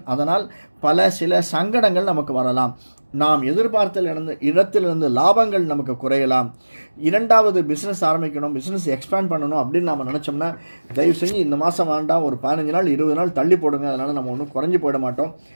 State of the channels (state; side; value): inverted; both; correlation -1.00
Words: அதனால் சில சங்கடங்கள் நமக்கு வரலாம். நாம் எதிர்பார்த்த இடத்திலிருந்து லாபங்கள் நமக்கு குறையலாம். இரண்டாவது பிஸ்னஸ் ஆரம்பிக்கணும், பிஸ்னஸ் எக்ஸ்பேண்ட் பண்ணணும் அப்படின்னு நம்ம நினச்சோம்னா தயவு செஞ்சு இந்த மாதம் வேண்டாம், ஒரு 15 நாள் 20 நாள் தள்ளி போடுங்க. அதனால் நம்ம ஒன்றும் குறைஞ்சி போயிட மாட்டோம்.